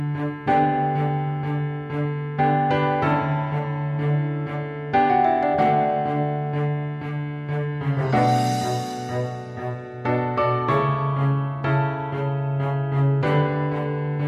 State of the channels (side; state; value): both; identical; correlation 1.00